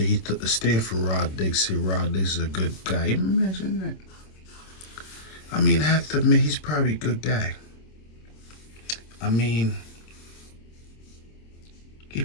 he took the stand for Rod Diggs. Said Rod Diggs is a good guy. Imagine that. I mean, I have to admit, he's probably a good guy. I mean, he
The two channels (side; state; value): right; late; 26 ms